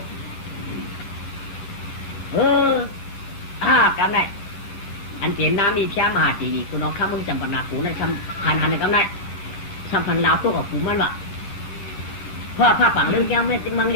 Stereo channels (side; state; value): right; late; 11 ms